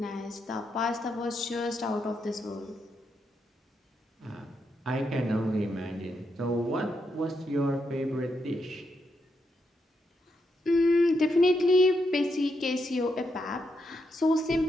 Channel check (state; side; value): normal; both; correlation 0.81